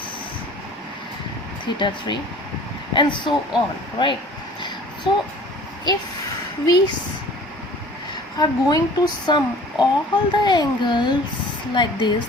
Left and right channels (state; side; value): normal; both; correlation 0.47